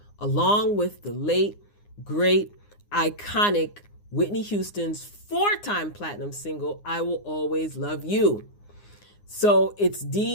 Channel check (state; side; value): late; right; 9.7 ms